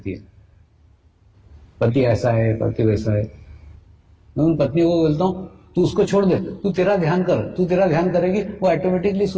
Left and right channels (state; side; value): identical; both; correlation 1.00